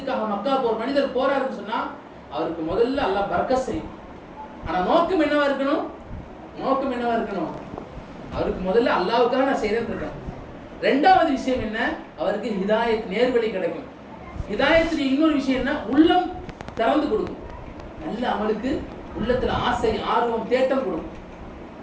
மக்கா போற மனிதர் போறாருன்னு சொன்னா அவருக்கு முதல்ல அல்லாஹ் பரக்கத் செய்யும். ஆனா நோக்கம் என்னவா இருக்கணும்? அவருக்கு முதல்ல அல்லாஹ்வுக்காக நான் செய்யறேன்னு இருக்கேன். ரெண்டாவது விஷயம் என்ன? அவருக்கு ஹிதாயத், நேர்வழி கிடைக்கும். ஹிதாயத்துடைய இன்னொரு விஷயம் என்ன? உள்ளம் திறந்து கொடுக்கும். நல்ல அமலுக்கு உள்ளத்துல ஆசை, ஆர்வம், தேட்டம் கொடுக்கும்.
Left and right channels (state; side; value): identical; both; correlation 1.00